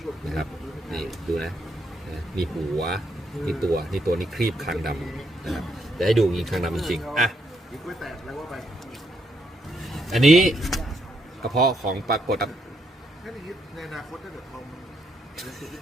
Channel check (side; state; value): both; normal; correlation 0.76